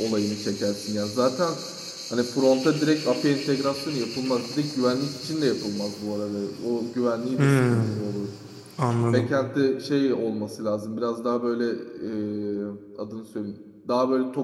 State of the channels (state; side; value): identical; both; correlation 1.00